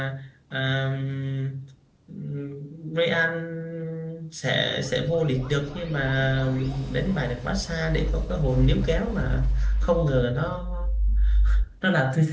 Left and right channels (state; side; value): identical; both; correlation 1.00